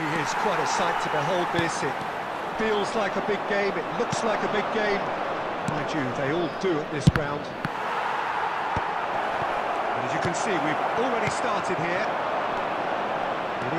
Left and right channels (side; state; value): both; identical; correlation 1.00